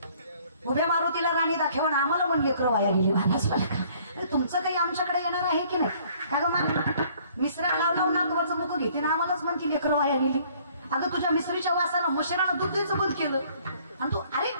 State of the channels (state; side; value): inverted; both; correlation -0.59